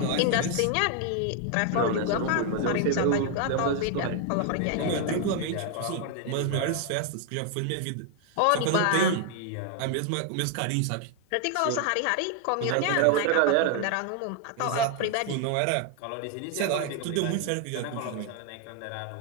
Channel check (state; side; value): different; both; correlation 0.00